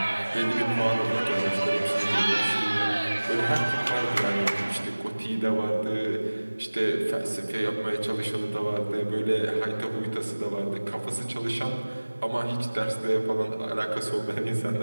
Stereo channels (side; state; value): both; inverted; correlation -1.00